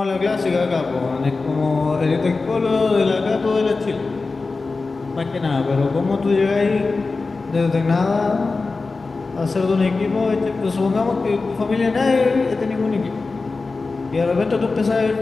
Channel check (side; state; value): right; quieter; 3.9 dB